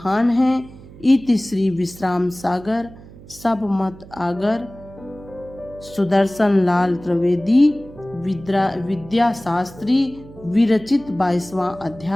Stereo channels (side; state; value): right; noise; hum, 19 dB below the sound